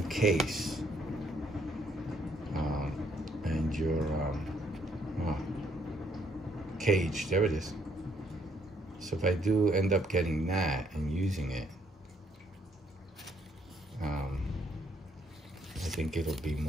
case. And your cage, there it is. So if I do end up getting that and using it, I think it'll be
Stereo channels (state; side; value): normal; both; correlation 0.69